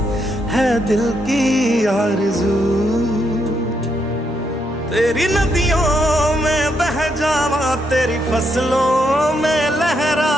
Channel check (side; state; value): both; normal; correlation 0.78